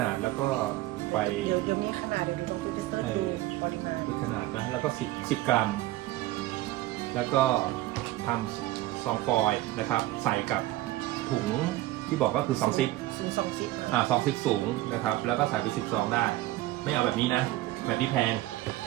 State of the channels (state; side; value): quieter; left; 16.7 dB